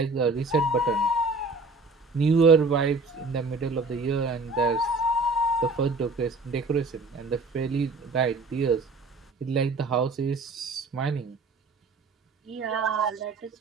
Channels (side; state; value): left; quieter; 3.5 dB